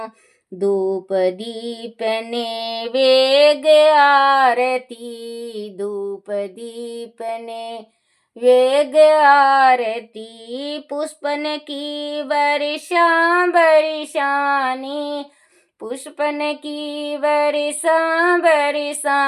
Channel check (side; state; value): both; identical; correlation 1.00